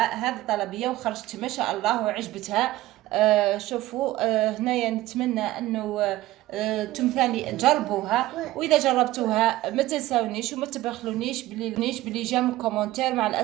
هذه الطلبية وخرجت ما شاء الله وعجبتها. شوفوا، هنايا نتمنى انه ثاني تجربوها، واذا جربتوها ما تنساونيش وما تبخلونيش بلي جام كومنتير مع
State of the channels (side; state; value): left; quieter; 16.5 dB